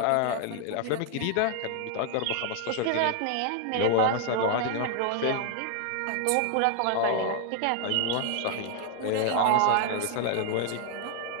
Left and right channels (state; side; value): different; both; correlation 0.00